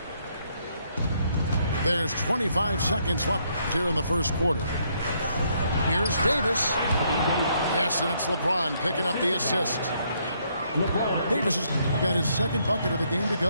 There's 25 seconds left here in the first quarter. Here's Davis. Yes, and it's LeBron picking up the assist. Davis has got his second bucket of the game to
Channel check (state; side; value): inverted; both; correlation -0.72